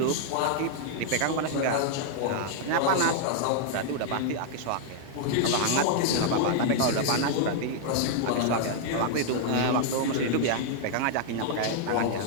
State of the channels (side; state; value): both; different; correlation -0.01